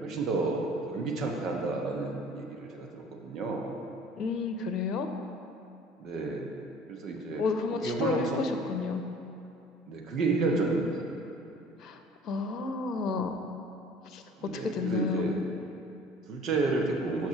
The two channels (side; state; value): both; normal; correlation 0.49